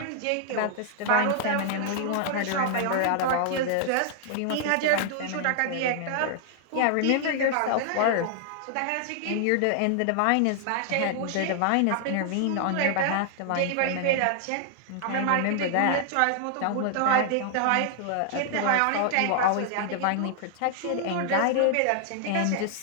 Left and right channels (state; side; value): different; both; correlation 0.00